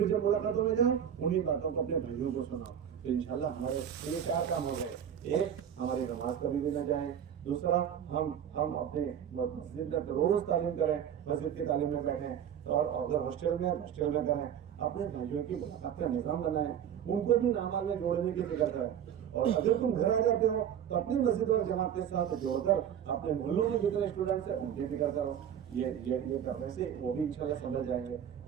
जब मुलाकातों में जाओ उन्हीं बातों को अपने भाइयों को सुनाओ, तो इंशाल्लाह हमारे ये 4 काम हो गए। एक, हमारी नमाज कभी भी न जाए, दूसरा हम अपने मस्जिद में रोज तालीम करें, मस्जिद की तालीम में बैठें, और अगर हॉस्टल में करें, अपने भाइयों की मुलाकात का निज़ाम बनाएं, उनको भी नामाल में जोड़ने की फिक्र करें। और अगर तुम घर आ जाते हो तो अपनी मस्जिद और जमात के साथ जोड़कर अपने मोहल्लों में जितने स्टूडेंट्स हैं उनकी फिक्र करो। ये करने से वो भी इंशाल्लाह समझ जाएंगे।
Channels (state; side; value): quieter; left; 9.1 dB